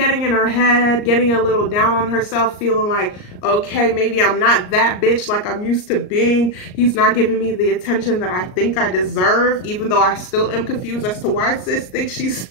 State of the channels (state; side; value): late; right; 38 ms